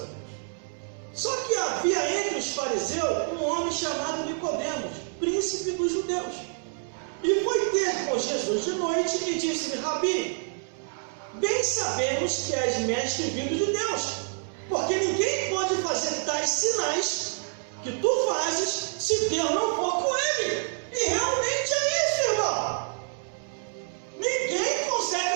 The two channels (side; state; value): left; silent; 60 dB below the other